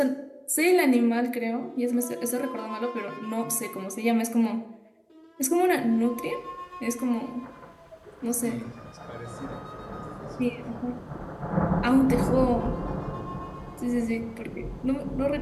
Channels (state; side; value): identical; both; correlation 1.00